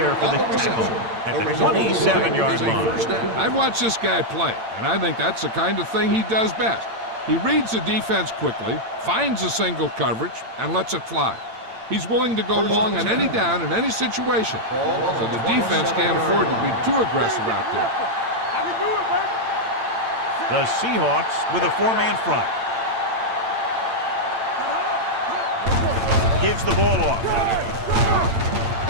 for the tackle at the 27-yard line. I've watched this guy play, and I think that's the kind of thing he does best. He reads the defense quickly, finds a single coverage, and lets it fly. He's willing to go long on any down in any situation, so the defense can't afford to be too aggressive out there. I can do it, baby. The Seahawks with a 4-man front. Gives the ball off.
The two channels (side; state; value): left; late; 8.8 ms